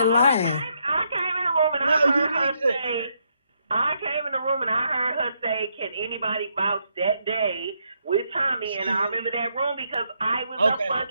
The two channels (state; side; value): inverted; both; correlation -0.77